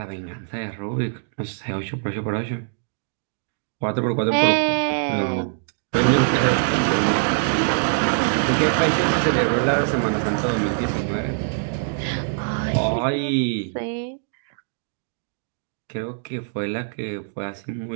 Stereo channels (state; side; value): silent; left; digital silence